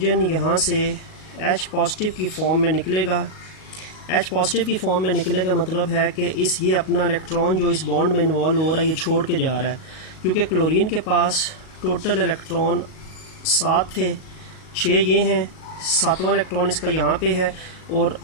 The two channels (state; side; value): late; right; 38 ms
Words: यहाँ से H पॉजिटिव की फॉर्म में निकलेगा। H पॉजिटिव की फॉर्म में निकले का मतलब है कि ये अपना इलेक्ट्रॉन जो इस बॉन्ड में इन्वॉल्व हो रहा है ये छोड़ के जा रहा है, क्योंकि क्लोरीन के पास टोटल इलेक्ट्रॉन 7 थे, 6 ये हैं, 7वां इलेक्ट्रॉन इसका यहाँ पे है और